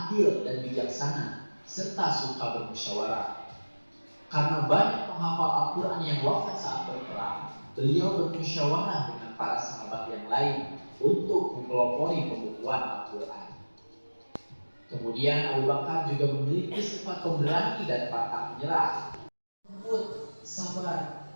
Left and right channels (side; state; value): both; inverted; correlation -1.00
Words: dan bijaksana, serta suka bermusyawarah. Karena banyak penghafal Al-Quran yang wafat saat berperang, beliau bermusyawarah dengan para sahabat yang lain untuk mempelopori pembukuan Al-Quran. Kemudian Abu Bakar juga memiliki sifat pemberani dan pantang menyerah. Lembut, sabar,